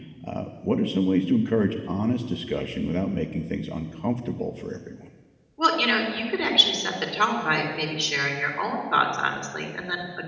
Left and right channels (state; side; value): identical; both; correlation 1.00